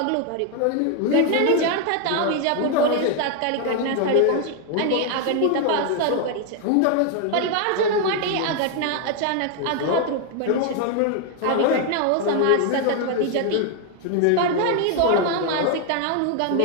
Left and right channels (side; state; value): both; different; correlation 0.01